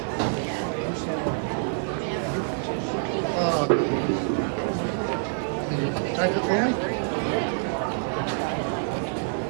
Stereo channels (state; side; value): silent; left; 55 dB below the other